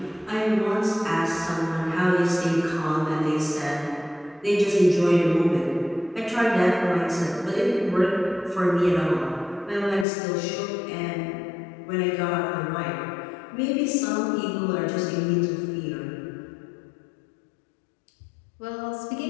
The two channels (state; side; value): drops out; right; at 10.1 s